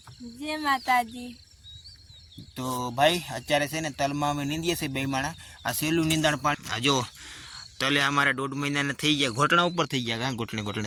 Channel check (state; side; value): identical; both; correlation 1.00